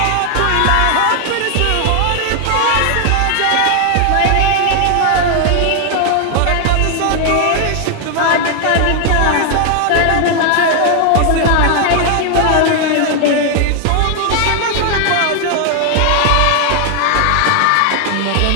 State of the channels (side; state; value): both; different; correlation 0.00